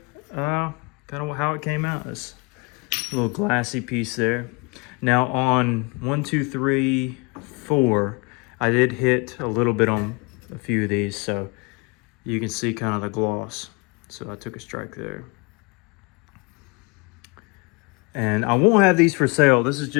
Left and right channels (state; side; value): quieter; right; 29.2 dB